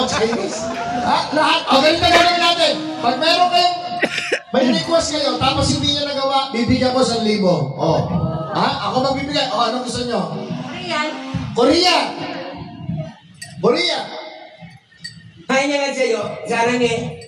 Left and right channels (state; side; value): identical; both; correlation 1.00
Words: Chinese? Lahat. O, ganito gagawin natin. Pag meron kayong, may request kayo, tapos hindi nyo nagawa, bibigyan ko 1,000. O. Ako magbibigay. O, anong gusto nyo? Korea. Hay nga sa'yo, sana nga,